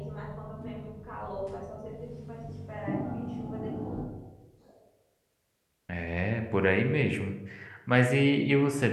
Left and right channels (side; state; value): both; identical; correlation 1.00